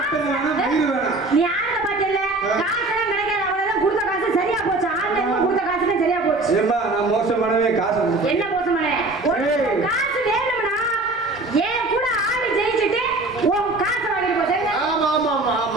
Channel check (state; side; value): quieter; left; 3.1 dB